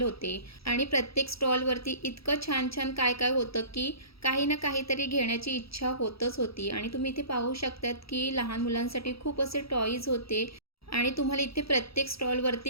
होते। आणि प्रत्येक स्टॉलवरती इतकं छान छान काय काय होतं की काही ना काहीतरी घेण्याची इच्छा होतच होती। आणि तुम्ही इथे पाहू शकतात की लहान मुलांसाठी खूप असे टॉईज होते। आणि तुम्हाला इथे प्रत्येक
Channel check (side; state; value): right; late; 0.77 ms